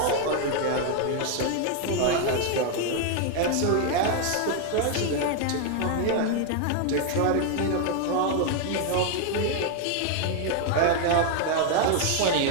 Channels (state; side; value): different; both; correlation 0.00